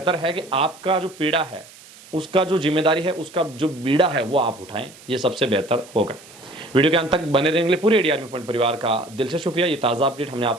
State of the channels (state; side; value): noise; right; hiss, 21 dB below the sound